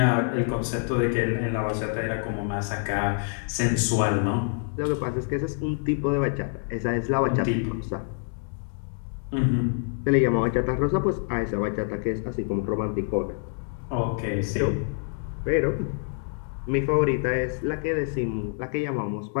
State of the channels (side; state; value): right; silent; 61 dB below the other